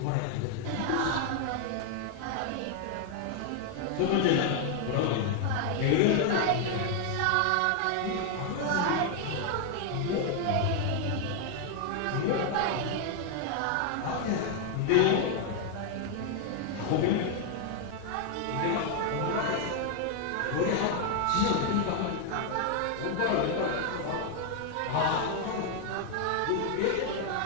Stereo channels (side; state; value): both; different; correlation 0.00